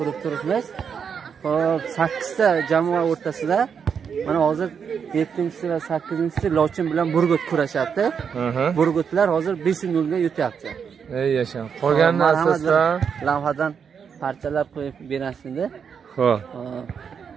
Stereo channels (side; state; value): left; quieter; 6.9 dB